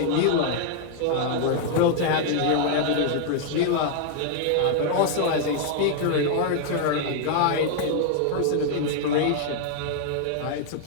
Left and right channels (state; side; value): different; both; correlation 0.00